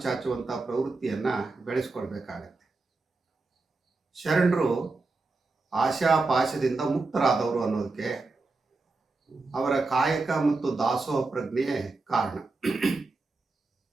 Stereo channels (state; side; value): quieter; left; 3.6 dB